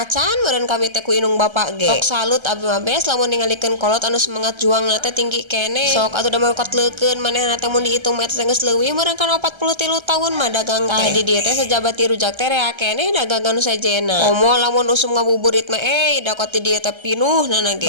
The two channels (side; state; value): left; late; 1.3 ms